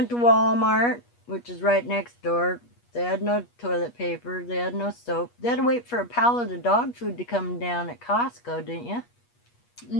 to Walmart, which is right next door. They had no toilet paper, they had no soap. They had to wait for a pallet of dog food to come down at Costco, didn't you?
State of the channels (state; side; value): late; right; 8.3 ms